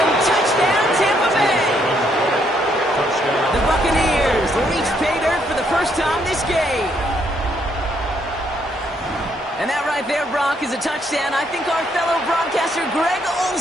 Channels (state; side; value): normal; both; correlation 0.72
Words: touchdown, Tampa Bay. The Buccaneers reach pay dirt for the first time this game. And that right there, Brock, is a touchdown I think our fellow broadcaster Greg